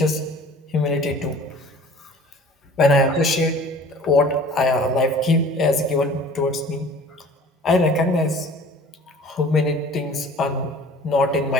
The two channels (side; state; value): both; normal; correlation 0.47